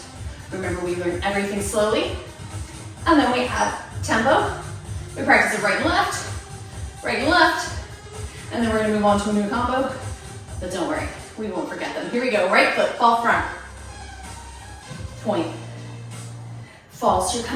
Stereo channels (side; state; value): both; identical; correlation 1.00